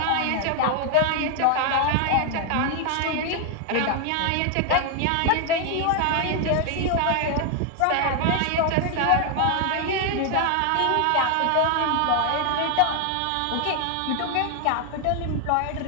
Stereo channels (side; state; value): both; different; correlation 0.00